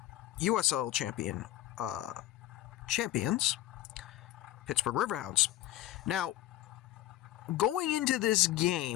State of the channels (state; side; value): quieter; right; 14.5 dB